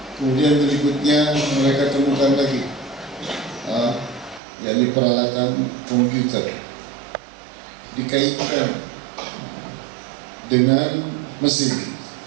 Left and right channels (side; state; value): left; drops out; at 4.4 s